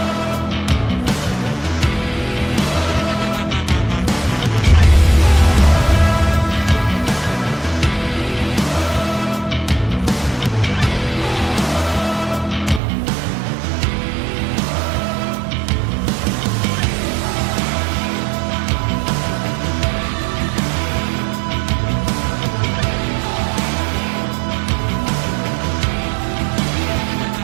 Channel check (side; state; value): left; drops out; at 12.8 s